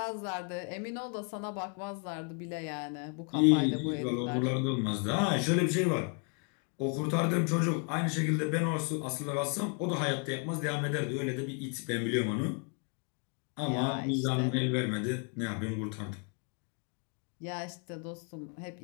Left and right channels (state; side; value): quieter; right; 36.8 dB